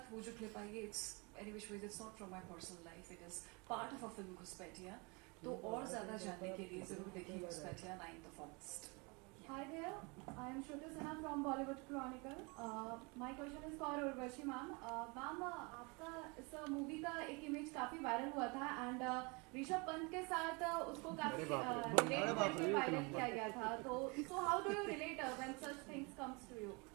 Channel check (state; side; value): quieter; left; 29.4 dB